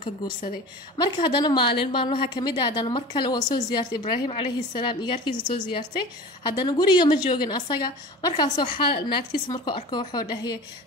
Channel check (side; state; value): both; normal; correlation 0.36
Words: ka guursaday marka haddana maalmaha kamid ah haddana mar kale waa soo ziyaartay ibraahim calayhi salaam igaarkiisa soo ziyaartay haddana guriga ma joogin asaga markaasoo naagtiisa markuu arko wuxuu dhahayay